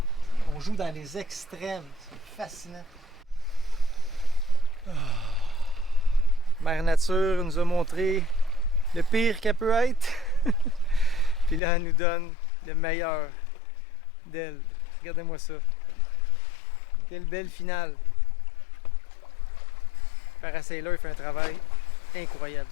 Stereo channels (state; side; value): drops out; right; at 11.6 s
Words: On joue dans les extrêmes. C'est fascinant. Mère Nature nous a montré le pire qu'elle peut être. Puis là, elle nous donne le meilleur d'elle. Regardez-moi ça. Quelle belle finale. Parasailor fait un travail incroyable.